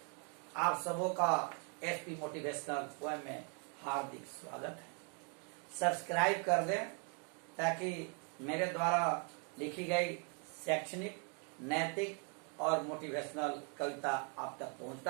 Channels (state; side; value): quieter; left; 39.4 dB